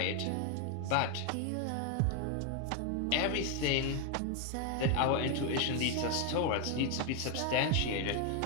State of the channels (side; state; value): both; different; correlation 0.00